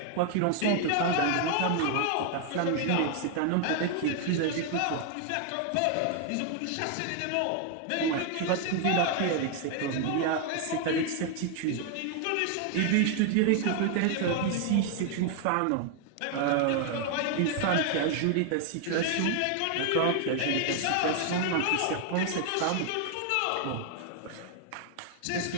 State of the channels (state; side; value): different; both; correlation 0.00